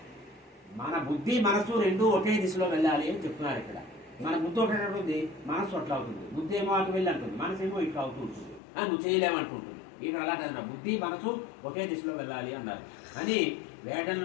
మన బుద్ధి మనస్సు రెండు ఒకే దిశలో వెళ్ళాలి అని చెప్తున్నారు ఇక్కడ. మన బుద్ధి ఒకటి ఉంటుంది, మనస్సు అట్లా అవుతుంది. బుద్ధి ఏమో అటు వెళ్ళి అంటుంది, మనసు ఏమో ఇట్లా అవుతూ ఉంటుంది, నువ్వు చేయలేమంటుంటుంది. ఇక్కడ అలా కదా, బుద్ధి మనసు ఒకే దిశలో వెళ్ళాలి అన్నారు. అని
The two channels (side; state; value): right; drops out; at 8.6 s